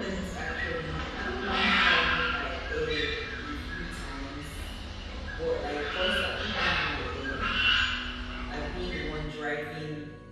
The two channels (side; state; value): both; identical; correlation 1.00